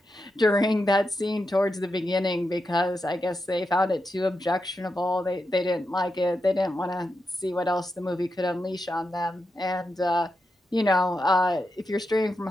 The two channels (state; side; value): normal; both; correlation 0.87